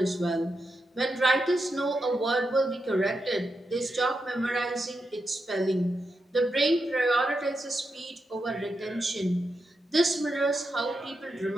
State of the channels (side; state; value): both; normal; correlation 0.86